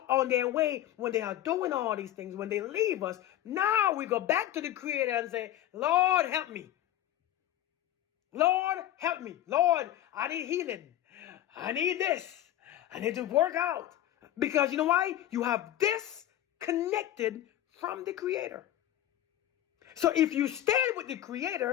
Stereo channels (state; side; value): quieter; right; 12.8 dB